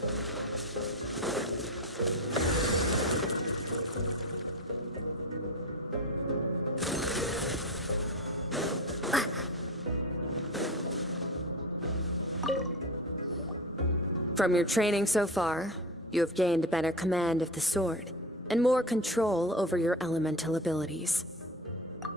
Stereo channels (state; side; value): normal; both; correlation 0.27